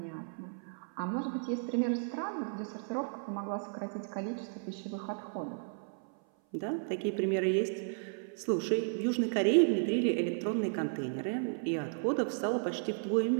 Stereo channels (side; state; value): left; silent; 55 dB below the other